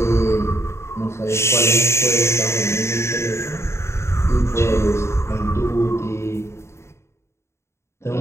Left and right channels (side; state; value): right; late; 0.13 ms